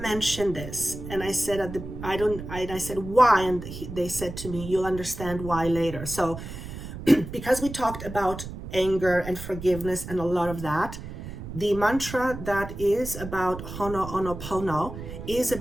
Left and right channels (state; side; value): noise; right; rumble, 10 dB below the sound